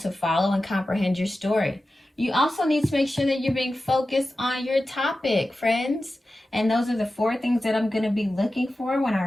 follow and comprehend your story. You also need to make sure that you're being focused on your topic, friends. And those are the 4 things that I'm going to be looking for when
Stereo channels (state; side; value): normal; both; correlation 0.94